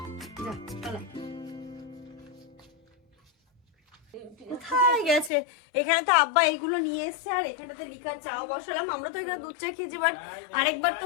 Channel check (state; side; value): drops out; right; at 5.3 s